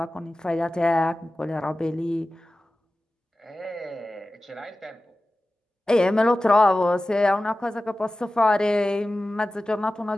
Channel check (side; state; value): both; normal; correlation 0.96